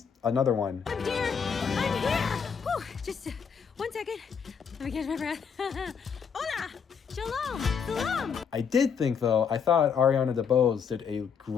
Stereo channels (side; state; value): right; quieter; 6.7 dB